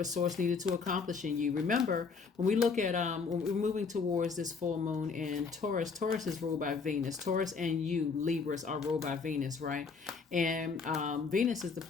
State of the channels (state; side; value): quieter; right; 5.1 dB